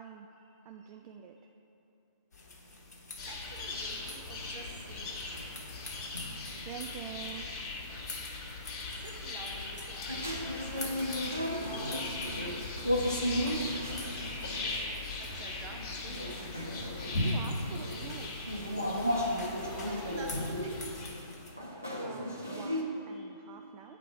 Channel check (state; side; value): inverted; both; correlation -0.50